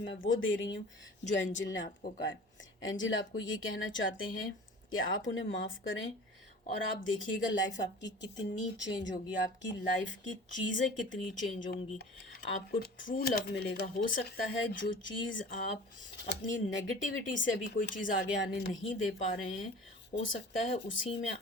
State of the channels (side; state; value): both; normal; correlation 0.41